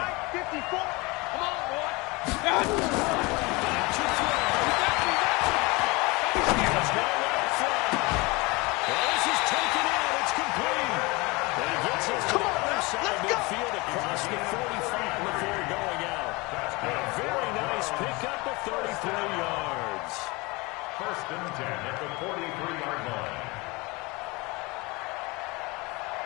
54. Come on, boy. Back to throw. It's now right front. Well, this is taken in. It's complete. And he gets us to the other side of midfield across the 45 before going out. A very nice pickup of 33 yards. 1st and 10 at the 43-yard line.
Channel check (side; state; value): right; quieter; 25.0 dB